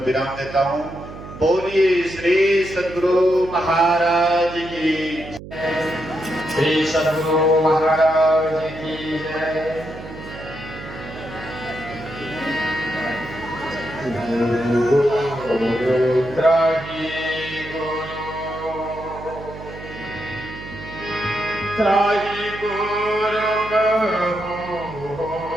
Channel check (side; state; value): right; noise; hum, 13 dB below the sound